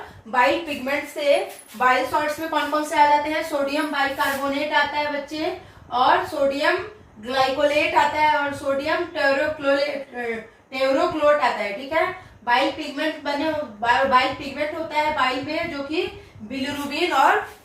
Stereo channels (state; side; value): identical; both; correlation 1.00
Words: बाइल पिगमेंट से बाइल सॉल्ट्स में कौन कौन से आ जाते हैं? सोडियम बाइकार्बोनेट आता है बच्चे, और सोडियम ग्लाइकोलेट आता है, और सोडियम टेरोक्लोट आता है, ठीक है। बाइल पिगमेंट होता है बाइल में, जो कि बिलिरुबिन और